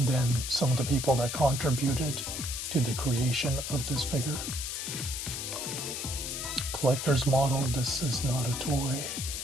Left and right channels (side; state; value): left; noise; hiss, 4 dB below the sound